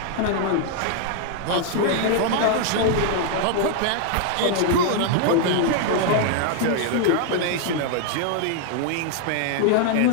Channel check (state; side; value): different; both; correlation 0.00